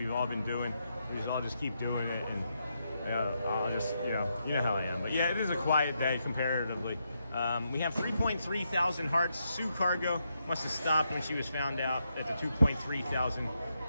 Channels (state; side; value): inverted; both; correlation -0.81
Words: all been doing, we just all just keep doing it, and I'll just, you know how I am. But yeah, it is a quiet day comparatively. We have 3.3 thousand hearts. Sue Cargo must have stopped when she was found out at the 2.3 thousand